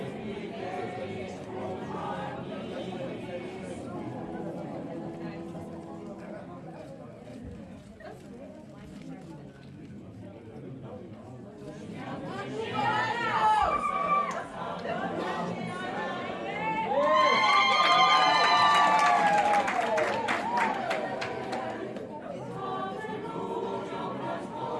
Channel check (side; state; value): both; identical; correlation 1.00